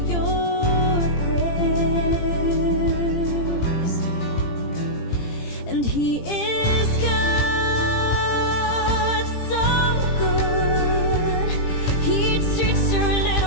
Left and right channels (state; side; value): late; right; 18 ms